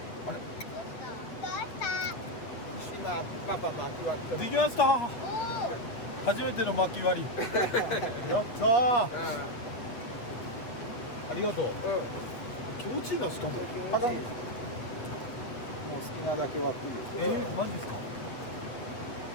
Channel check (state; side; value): late; right; 8.5 ms